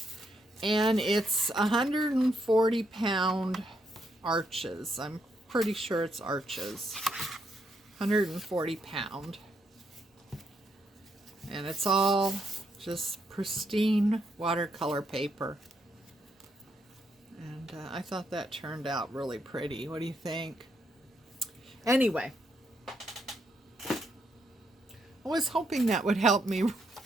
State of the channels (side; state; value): both; normal; correlation 0.77